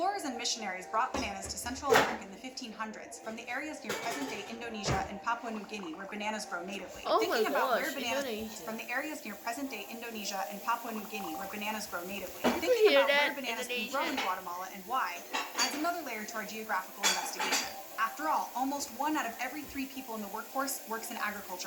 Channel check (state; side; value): identical; both; correlation 1.00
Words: and missionaries brought bananas to Central America in the 1500s from the areas near present-day Indonesia and Papua New Guinea where bananas grow natively. Oh Thinking my about gosh, where bananas Indonesia. from the areas near present-day Indonesia and Papua New Guinea where bananas grow natively. hear Thinking about that, where bananas can grow in Indonesia? Guatemala and why adds another layer to our geographical investigation. After all, almost 1 out of every 3 people in the workforce works in